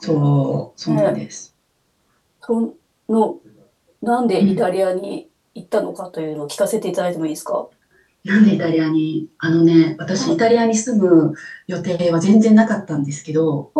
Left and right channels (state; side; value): identical; both; correlation 1.00